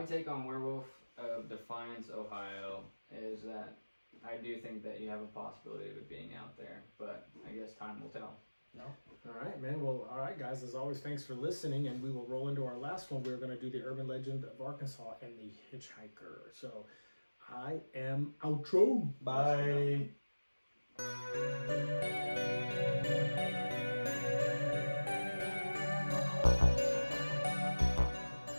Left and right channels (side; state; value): both; inverted; correlation -1.00